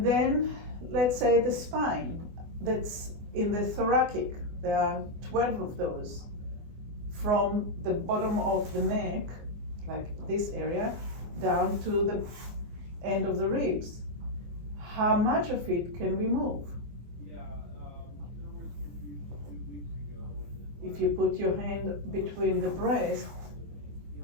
then let's say the spine, that's in the thoracic. There are 12 of those. From the bottom of the neck, like this area, down to the end of the ribs. How much of it can we move? If you put your hand between the breast,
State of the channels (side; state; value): left; late; 24 ms